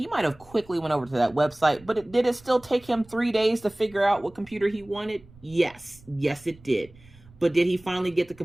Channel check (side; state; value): right; noise; rumble, 24 dB below the sound